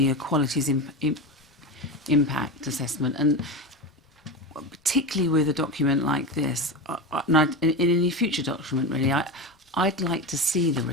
equalities impact assessment, and particularly with a document like this, and in any future document, really, I'd like to see the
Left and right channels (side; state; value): both; normal; correlation 0.22